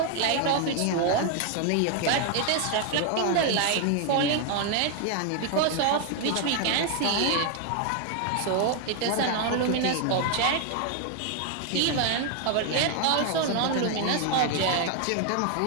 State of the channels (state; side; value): different; both; correlation 0.00